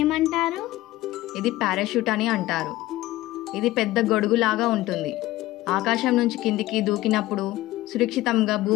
ఏమంటారు? ఇది పారాషూట్ అని అంటారు. ఇది పెద్ద గొడుగులాగా ఉంటుంది. ఆకాశం నుంచి కిందికి దూకినప్పుడు సురక్షితంగా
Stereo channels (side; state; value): right; quieter; 16.9 dB